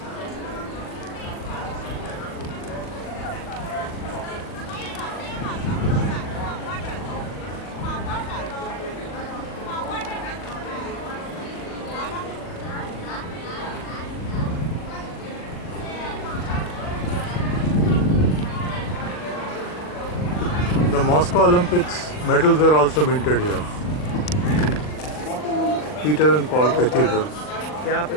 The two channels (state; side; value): late; right; 40 ms